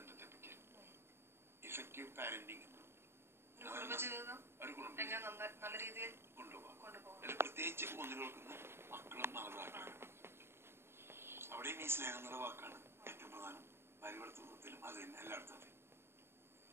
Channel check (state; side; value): late; left; 0.12 ms